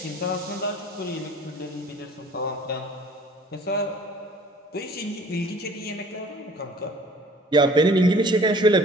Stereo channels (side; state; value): both; normal; correlation 0.50